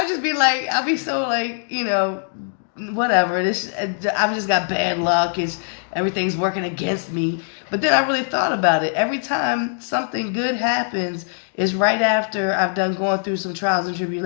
just be like, I'll be so like, whatever. I've just got bad luck. Everything's working against me. But then I really thought about it. Every time something good happens is right after I've done going through some trials and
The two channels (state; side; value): silent; right; 65 dB below the other